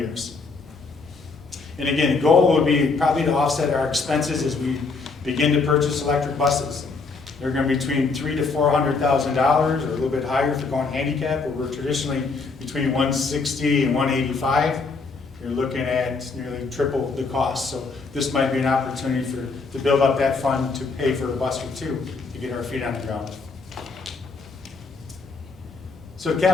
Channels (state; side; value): quieter; right; 4.3 dB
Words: And again, the goal would be probably to offset our expenses as we begin to purchase electric buses. They're going to be between $300,000 to $400,000, or a little bit higher if you're going handicap, where we're traditionally between $160,000 and $185,000. You're looking at nearly triple the cost. So this might be an opportunity to build up that fund to pay for a bus or two to get our feet on the ground. So